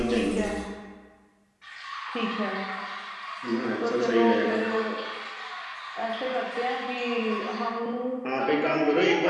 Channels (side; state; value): both; identical; correlation 1.00